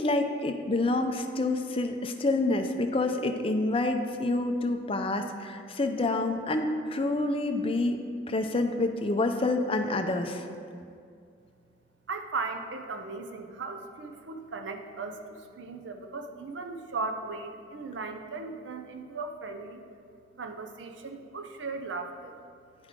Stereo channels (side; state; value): both; normal; correlation 0.51